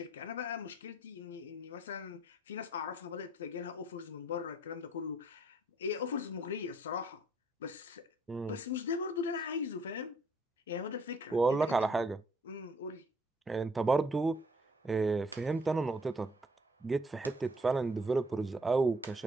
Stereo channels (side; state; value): both; normal; correlation 0.65